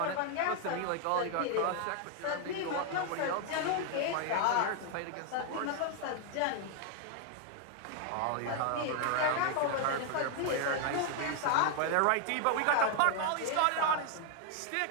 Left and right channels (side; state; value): both; different; correlation 0.00